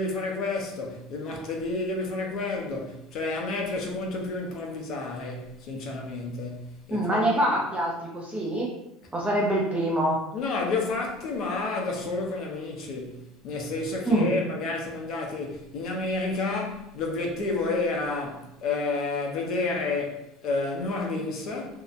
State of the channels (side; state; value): both; normal; correlation 0.43